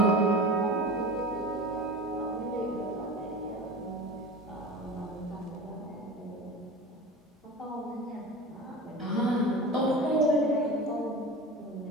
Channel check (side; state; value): both; normal; correlation 0.32